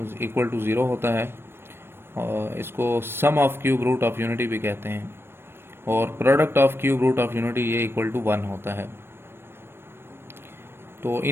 इक्वल टू 0 होता है, और इसको sum of cube root of unity भी कहते हैं, और product of cube root of unity ये इक्वल टू 1 होता है। तो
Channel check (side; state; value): left; late; 0.11 ms